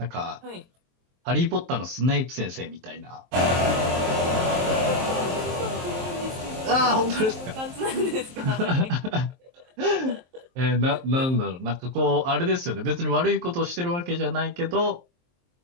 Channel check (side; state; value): left; late; 23 ms